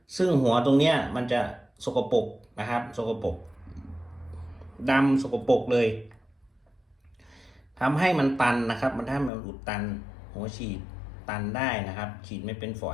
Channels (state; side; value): drops out; right; at 9.3 s